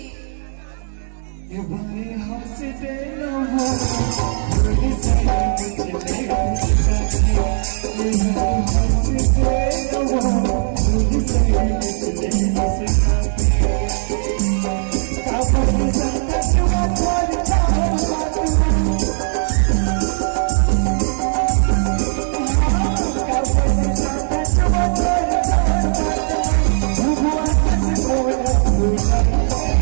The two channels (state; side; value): silent; left; digital silence